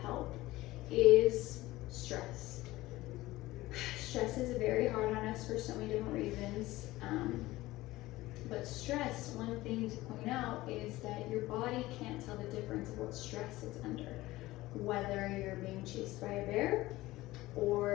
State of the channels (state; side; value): quieter; right; 18.0 dB